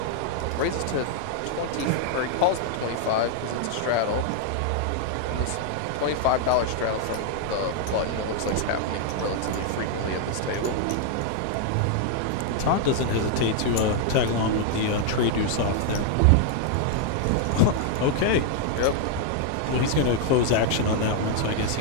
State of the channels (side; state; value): both; different; correlation 0.00